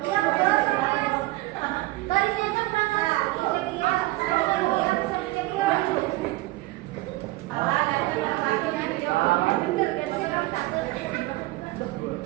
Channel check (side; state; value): left; quieter; 19.5 dB